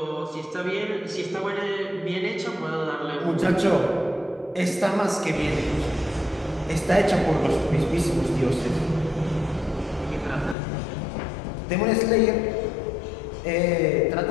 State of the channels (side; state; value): right; drops out; at 10.6 s